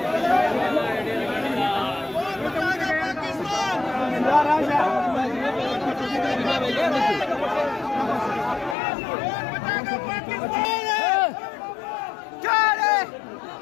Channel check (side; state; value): right; drops out; at 8.8 s